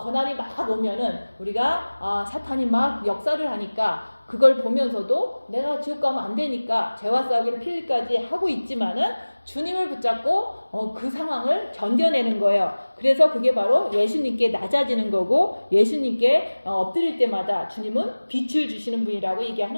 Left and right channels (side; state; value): both; inverted; correlation -1.00